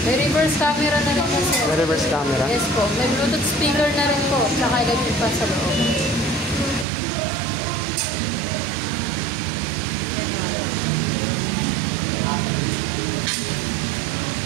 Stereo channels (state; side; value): drops out; left; at 6.9 s